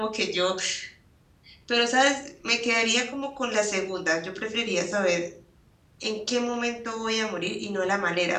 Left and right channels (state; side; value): identical; both; correlation 1.00